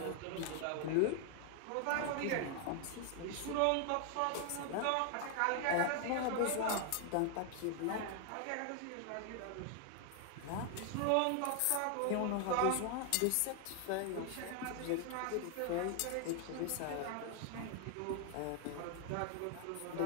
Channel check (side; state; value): both; different; correlation 0.00